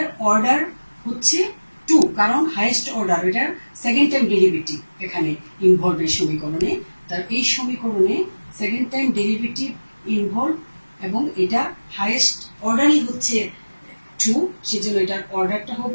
অর্ডার হচ্ছে 2, কারণ হাইয়েস্ট অর্ডার, এটার সেকেন্ড টাইম ডেরিভেটিভ এখানে ইনভলভ এই সমীকরণে। তার এই সমীকরণে সেকেন্ড টাইম ডেরিভেটিভ ইনভলভ এবং এটা হাইয়েস্ট অর্ডারই হচ্ছে 2, সেজন্য এটার অর্ডারটা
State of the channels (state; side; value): inverted; both; correlation -1.00